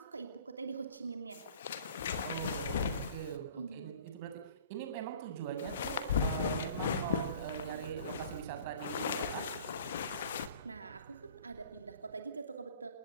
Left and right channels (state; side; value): inverted; both; correlation -0.47